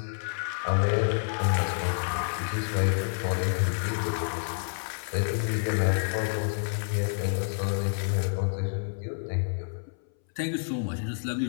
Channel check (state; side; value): silent; right; 59 dB below the other